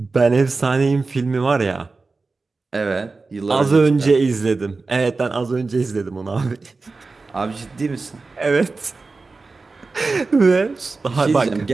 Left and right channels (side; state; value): left; quieter; 3.9 dB